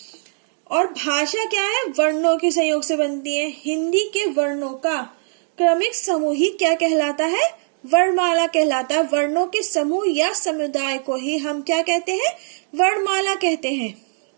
और भाषा क्या है? वर्णों के संयोग से बनती है। हिंदी के वर्णों का क्रमिक समूह ही क्या कहलाता है? वर्णमाला कहलाता है। वर्णों के समूह या समुदाय को ही हम क्या कहते हैं? वर्णमाला कहते हैं।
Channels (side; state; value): left; silent; 65 dB below the other